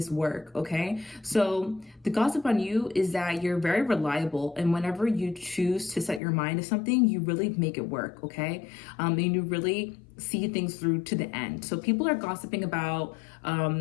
work, okay? So the gossip on you is that you're very reliable, and whenever you choose to set your mind to something, you really make it work, okay? And you really see things through to the end. So people are gossiping about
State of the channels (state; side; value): drops out; right; at 6.2 s